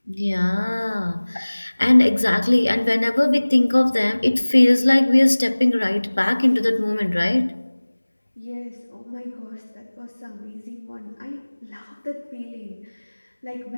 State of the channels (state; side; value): inverted; both; correlation -1.00